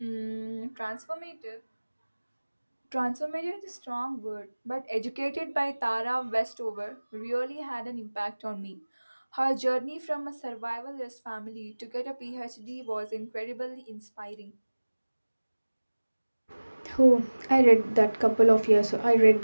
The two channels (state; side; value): inverted; both; correlation -1.00